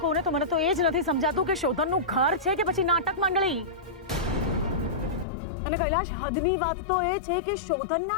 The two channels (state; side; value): drops out; right; at 5.2 s